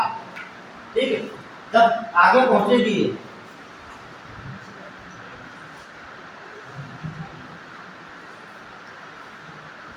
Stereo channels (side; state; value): both; identical; correlation 1.00